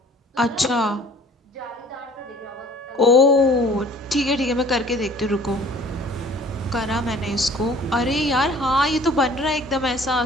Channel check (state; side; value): normal; both; correlation 0.51